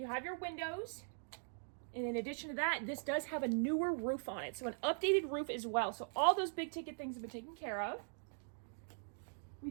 have your windows, and in addition to that, this does have a newer roof on it, so an updated roof as well. So all those big ticket things have been taken care of. We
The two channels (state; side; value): silent; left; digital silence